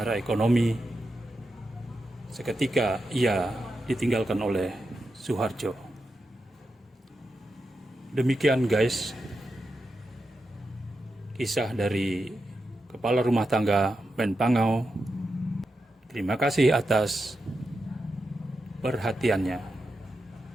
ekonomi seketika ia ditinggalkan oleh Soeharjo. Demikian guys, kisah dari Kepala Rumah Tangga Menpangau. Terima kasih atas perhatiannya.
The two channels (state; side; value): normal; both; correlation 0.88